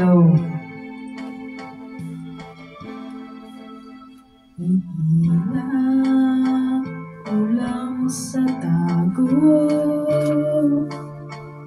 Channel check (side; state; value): both; identical; correlation 1.00